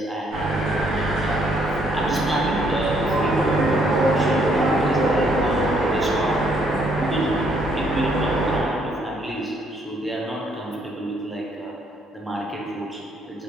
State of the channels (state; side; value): normal; both; correlation 0.68